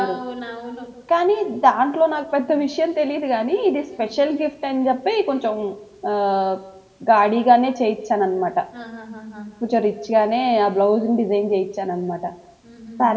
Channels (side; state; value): both; identical; correlation 1.00